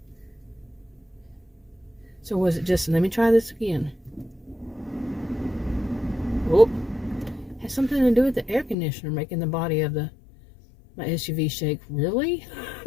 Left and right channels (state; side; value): drops out; right; at 8.8 s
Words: So was it just, let me try this again. Oh, has something to do with the air conditioner making the body of my SUV shake. Really?